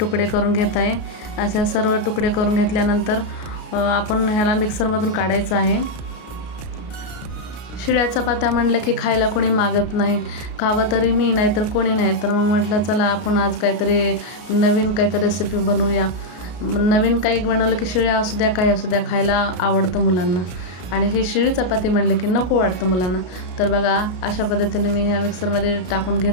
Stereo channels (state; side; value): late; right; 33 ms